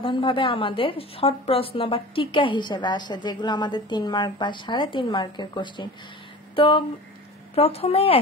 আমাদের শর্ট প্রশ্ন বা টিকা হিসেবে আসে, যেগুলো আমাদের 3 মার্ক বা 3.5 মার্কের কোশ্চেন। তো প্রথমেই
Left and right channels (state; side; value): normal; both; correlation 0.37